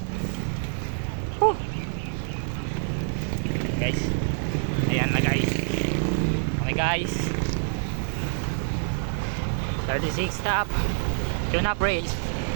Woo. Guys, ayan na guys. Okay guys, 36 stop. Tune up race.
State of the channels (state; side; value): silent; left; 61 dB below the other